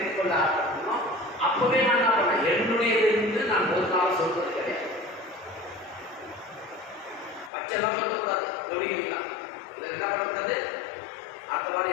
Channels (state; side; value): drops out; right; at 7.5 s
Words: கொள்ள ஆரம்பிக்கணும், அப்பவே நான் என்ன பண்ணேன்? என்னுடையது என்று நான் ஒரு நாள் சொல்வது கிடையாது. பச்செல்லாம் சொல்லக்கூடாது. கவனிக்கிறீங்களா? இதில் என்ன பண்ணக்கூடாது? அடுத்த